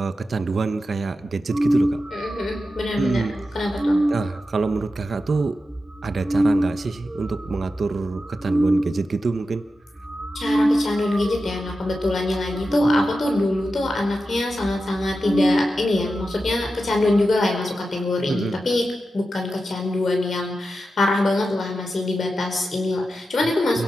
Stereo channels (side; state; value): both; normal; correlation 0.91